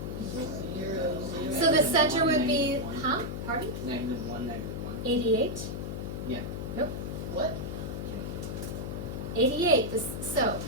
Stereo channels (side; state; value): left; noise; hum, 5 dB below the sound